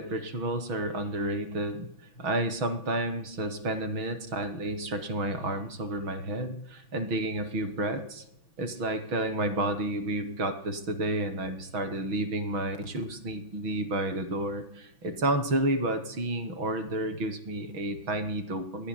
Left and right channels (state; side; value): late; left; 6.3 ms